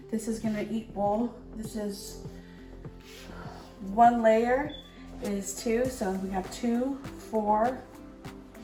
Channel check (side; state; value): both; identical; correlation 1.00